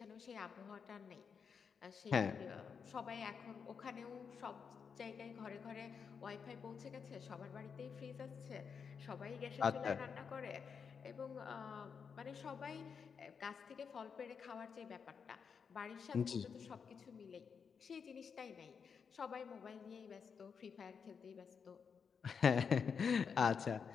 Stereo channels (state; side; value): quieter; right; 6.3 dB